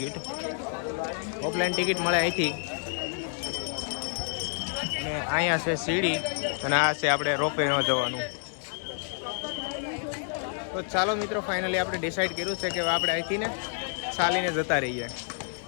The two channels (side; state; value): right; silent; digital silence